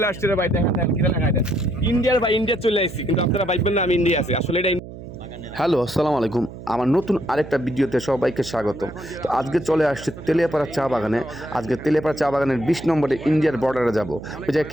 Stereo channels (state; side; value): noise; right; hum, 13 dB below the sound